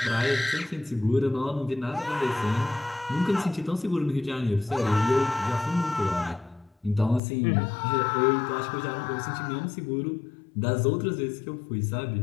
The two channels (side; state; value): right; drops out; at 7.2 s